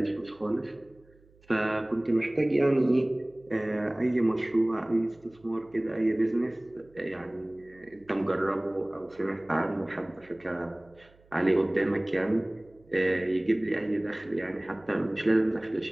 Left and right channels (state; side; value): noise; right; hum, 29 dB below the sound